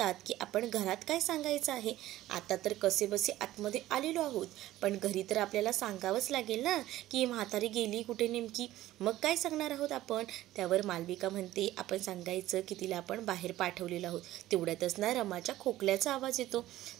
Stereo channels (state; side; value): quieter; left; 15.1 dB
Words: की आपण घरात काय सांगायचं आहे, आता तर कसेबसे आतमध्ये आलेलो आहोत, पण घरी तर आपल्याला सांगावंच लागेल ना की म्हातारी गेली कुठे नेमकी, मग काय सांगणार आहोत आपण. त्यावर मालविका म्हणते आपण सांगायचं की तिला आपण बाहेर पाठवलेलं आहोत. तेवढ्यातच ना रमाच्या खोकल्याचा आवाज येतो.